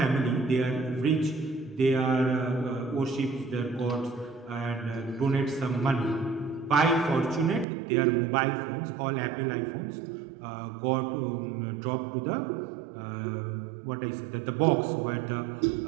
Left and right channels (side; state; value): left; drops out; at 7.7 s